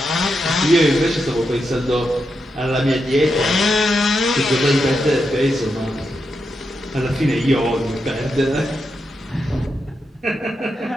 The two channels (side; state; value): both; normal; correlation 0.85